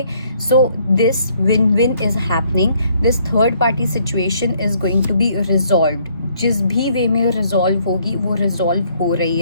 So this win-win is happening. This third party situation is going to be resolved. जिस भी वे में resolve होगी वो resolve हो रही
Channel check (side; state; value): both; inverted; correlation -0.66